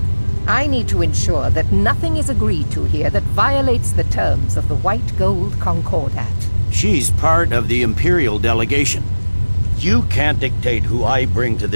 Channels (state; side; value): inverted; both; correlation -1.00